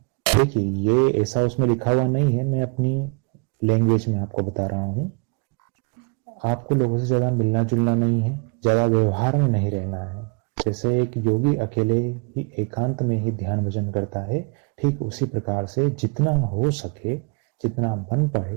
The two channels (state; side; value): quieter; left; 32.3 dB